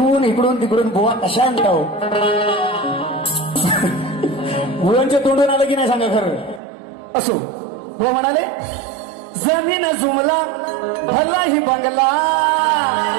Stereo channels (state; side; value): drops out; left; at 6.6 s